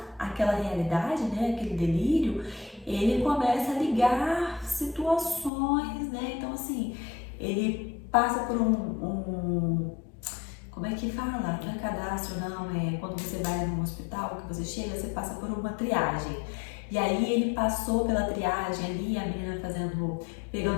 aquela realidade, né? Aquele delírio, ele começa a ligar situações, né? Então assim, ele passa por como é que fala? Não é cadastro, não, é quando você vai num hospital, que você chega, você passa por uma triagem. E aí ele passou pela triagem ali, a menina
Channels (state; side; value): drops out; right; at 5.5 s